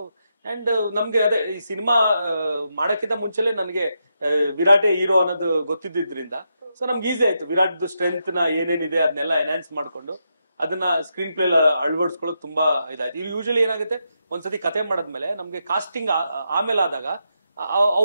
ಅಂಡ್ ನಮ್ಗೆ ಅದೇ ಈ ಸಿನಿಮಾ ಮಾಡಕ್ಕಿಂತ ಮುಂಚೆಲೆ ನನಗೆ ವಿರಾಟೇ ಹೀರೋ ಅನ್ನೋದು ಗೊತ್ತಿದ್ದಿದ್ರಿಂದ ಸೊ ನಮ್ಗೆ ಈಸಿ ಆಯ್ತು. ವಿರಾಟ್ ಸ್ಟ್ರೆಂತ್ ನ ಏನೇನಿದೆ ಅದನ್ನೆಲ್ಲ ಎನ್ಹಾನ್ಸ್ ಮಾಡ್ಕೊಂಡು ಅದನ್ನ ಸ್ಕ್ರೀನ್ ಪ್ಲೇ ಅಳವಡಿಸ್ಕೊಳ್ಳೋದು ತುಂಬಾ ಇದಾಯ್ತು. ಇದು ಯೂಶಲಿ ಏನಾಗುತ್ತೆ, ಒಂದ್ಸತಿ ಕತೆ ಮಾಡದ್ಮೇಲೆ ನಮ್ಗೆ ಕಾಸ್ಟಿಂಗ್ ಆಮೇಲೆ ಆದಾಗ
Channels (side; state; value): both; inverted; correlation -0.83